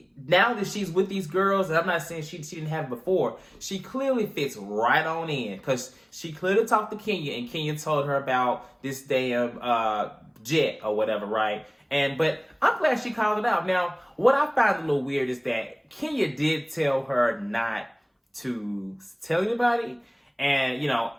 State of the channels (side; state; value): both; identical; correlation 1.00